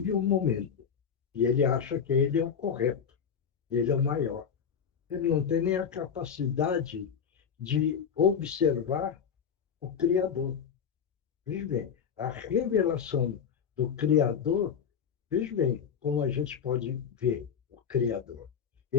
um momento. E ele acha que ele é o correto. Ele é o maior. Ele não tem nem a capacidade de observar o Criador. Veja bem, a revelação do Criador, veja bem, como a gente pode ver o Criador.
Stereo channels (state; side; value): quieter; right; 7.3 dB